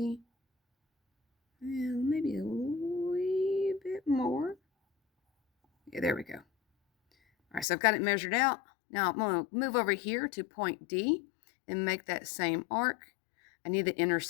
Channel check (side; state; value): right; drops out; at 7.7 s